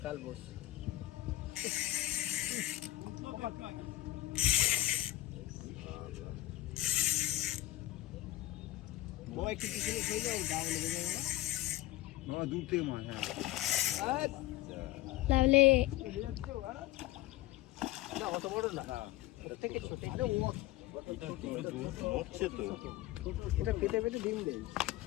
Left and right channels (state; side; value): quieter; right; 16.3 dB